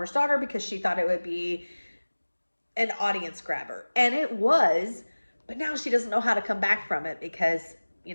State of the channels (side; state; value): both; inverted; correlation -1.00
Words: daughter because she thought it would be an audience grabber. And it was, but now she doesn't know how to come back from it because, you